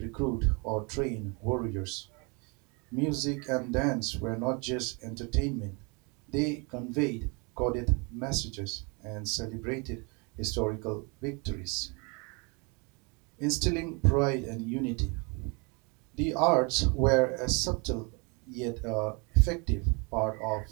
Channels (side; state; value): left; quieter; 31.5 dB